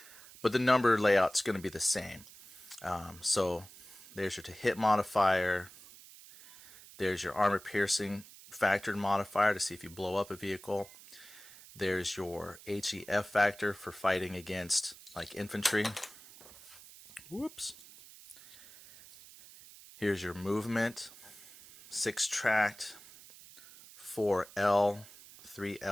but the number layout's going to be the same. So there's your to hit modifier. There's your armor piercing factored modifier to see if you blow up a vehicle. There's your HEF factor for fighting against like infantry. Whoops. Here's your movement, 6 tracked. 4L,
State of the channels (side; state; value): right; noise; hiss, 19 dB below the sound